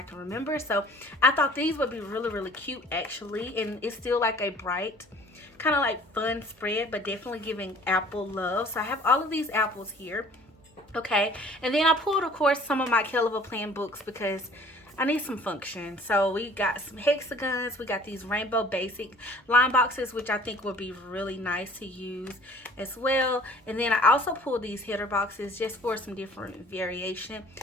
remember. So I thought these would be really cute actually, and it's still like a bright kind of like fun spread, but definitely giving apple love. So I have all of these apples here, okay, and then I pulled of course some of my KELL plan books because I need some function. So we got some hexagons, we got these rainbow basic line boxes, which I think would be really nice to use as well. And then I also pulled these header boxes just for some different variation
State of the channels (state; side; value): normal; both; correlation 0.51